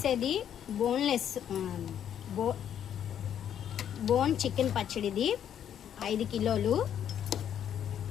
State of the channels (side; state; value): right; quieter; 9.5 dB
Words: బోన్లెస్ బోన్ చికెన్ పచ్చడిది 5 కిలోలు.